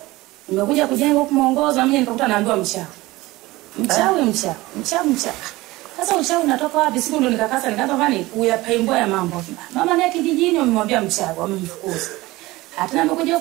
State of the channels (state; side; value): quieter; left; 19.6 dB